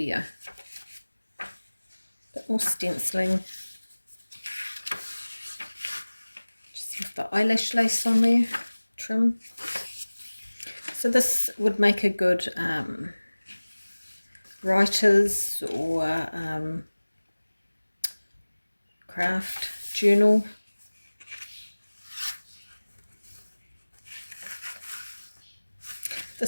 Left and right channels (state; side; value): inverted; both; correlation -1.00